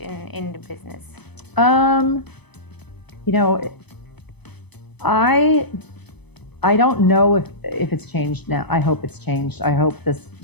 the business? I don't know if it's changed now. I hope it's changed. I hope this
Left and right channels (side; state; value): right; late; 0.99 ms